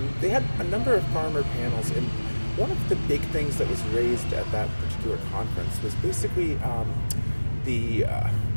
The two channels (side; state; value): both; inverted; correlation -1.00